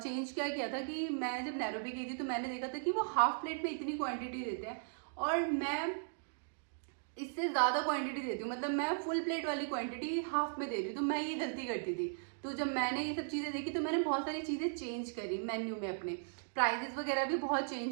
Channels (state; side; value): silent; left; digital silence